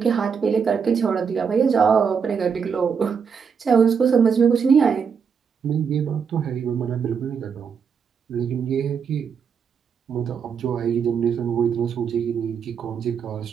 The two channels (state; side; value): quieter; left; 6.5 dB